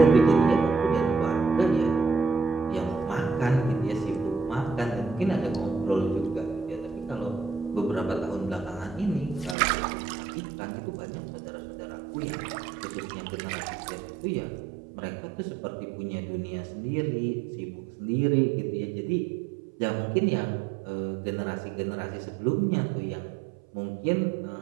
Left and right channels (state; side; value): drops out; left; at 9.6 s